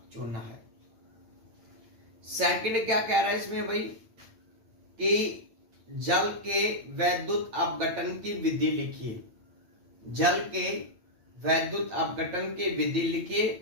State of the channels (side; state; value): left; late; 8.8 ms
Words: चूना है। सेकंड क्या कह रहा है इसमें भाई, कि जल के वैद्युत अपघटन की विधि लिखिए। जल के वैद्युत अपघटन की विधि